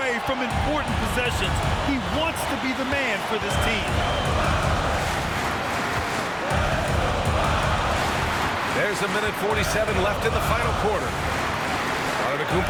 from important possessions. He wants to be the man for this team. There's a minute 47 left in the final quarter.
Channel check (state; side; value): identical; both; correlation 1.00